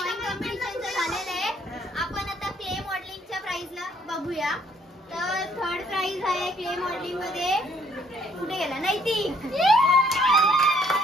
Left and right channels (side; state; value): both; normal; correlation 0.65